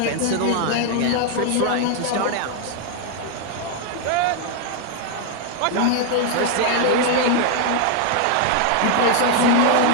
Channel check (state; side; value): different; both; correlation 0.00